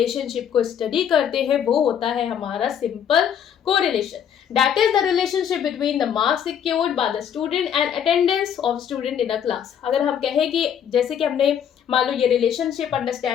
को स्टडी करते हैं वो होता है हमारा simple correlation. That is the relationship between the marks secured by the student and attendance of student in a class. अगर हम कहें कि जैसे कि हमने मान लो ये रिलेशनशिप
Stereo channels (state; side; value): quieter; right; 8.7 dB